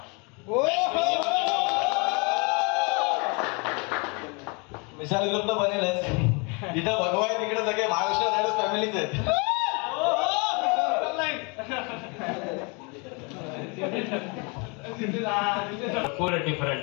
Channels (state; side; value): quieter; right; 31.8 dB